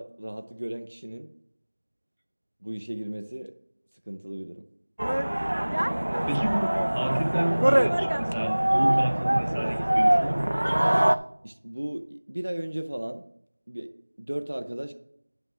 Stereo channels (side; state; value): both; inverted; correlation -1.00